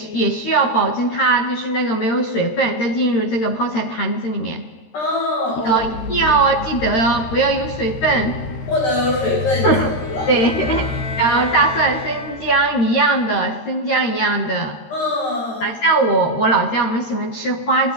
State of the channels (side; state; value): right; late; 13 ms